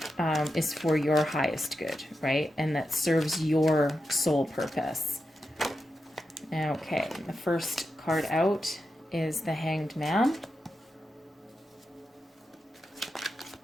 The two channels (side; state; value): both; normal; correlation 0.89